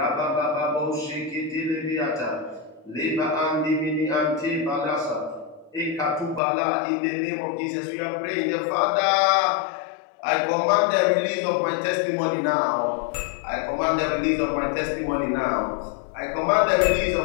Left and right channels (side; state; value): right; drops out; at 6.4 s